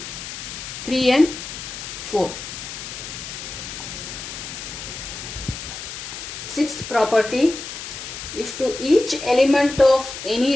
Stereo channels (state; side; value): noise; left; hiss, 9 dB below the sound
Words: 3 and 4. Sixth property, if to each element of